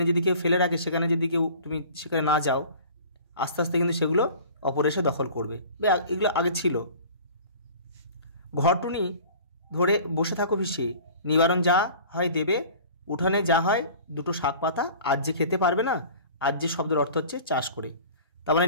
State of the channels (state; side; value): inverted; both; correlation -0.43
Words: যদি কেউ ফেলে রাখে, সেখানে যদি তুমি সেখানে না যাও, আস্তে আস্তে কিন্তু সেগুলো অপর এসে দখল করবে। এগুলো আগে ছিল। ঘরটুনি ধরে বসে থাকো পিছিয়ে, নিবারণ যা হয় দেবে, উঠানে যা হয় 2টো শাক পাতা, আজ যে খেতে পারবে না। আজ যে শব্দের অর্থ হচ্ছে চাষ করে। তার মানে